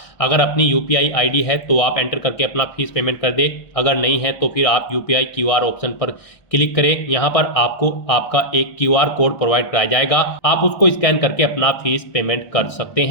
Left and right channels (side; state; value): right; late; 1.6 ms